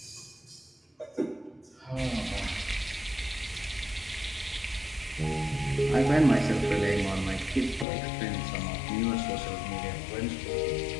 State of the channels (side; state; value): right; drops out; at 7.9 s